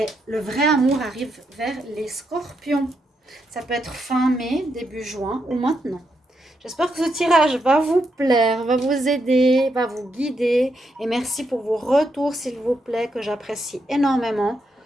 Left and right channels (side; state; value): both; normal; correlation 0.81